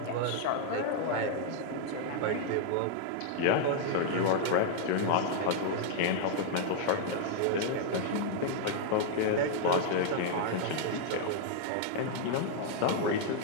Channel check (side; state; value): both; different; correlation -0.01